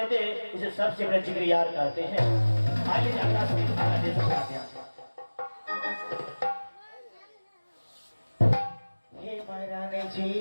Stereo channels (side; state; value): both; inverted; correlation -1.00